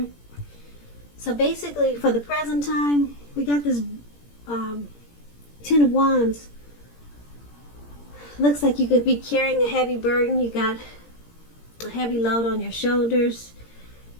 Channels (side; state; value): right; late; 17 ms